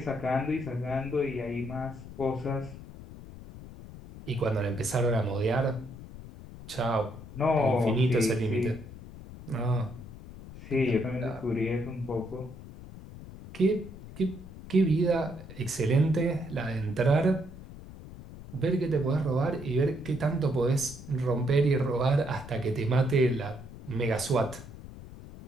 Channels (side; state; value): left; noise; rumble, 15 dB below the sound